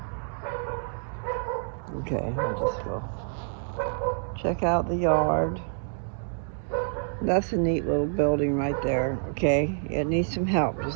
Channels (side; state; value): left; silent; digital silence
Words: Okay, I'll just go check out the yard. That's a neat little building right there, okay? It needs some help, just